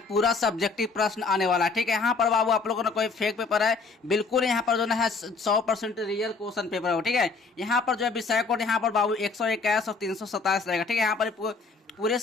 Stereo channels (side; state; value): right; quieter; 4.3 dB